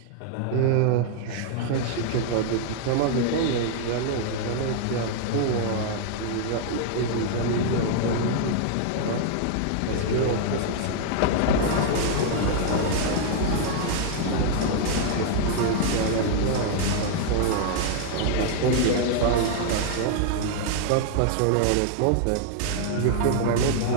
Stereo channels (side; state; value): both; different; correlation 0.00